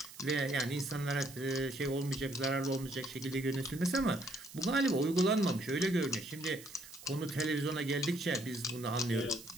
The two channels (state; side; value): noise; right; hiss, 17 dB below the sound